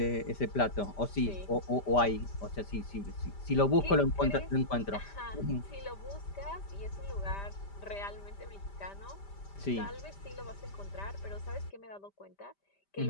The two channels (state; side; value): late; right; 5.0 ms